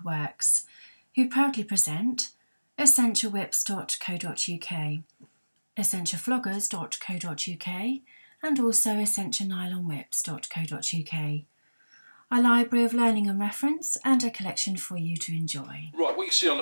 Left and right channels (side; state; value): both; inverted; correlation -1.00